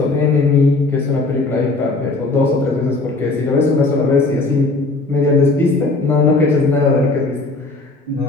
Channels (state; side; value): quieter; right; 3.3 dB